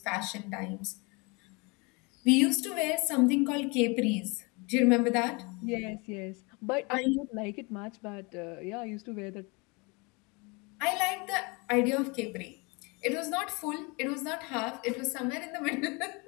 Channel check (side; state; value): right; quieter; 28.8 dB